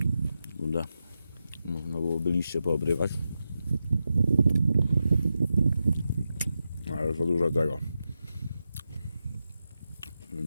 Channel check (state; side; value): inverted; both; correlation -0.88